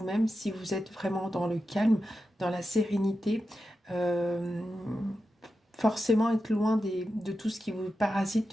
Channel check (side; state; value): both; normal; correlation 0.90